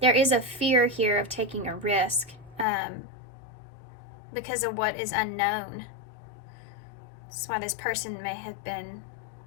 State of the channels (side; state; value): right; drops out; at 2.7 s